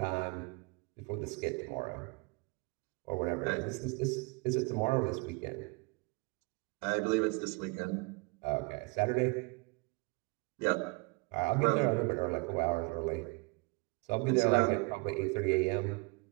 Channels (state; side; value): quieter; left; 28.4 dB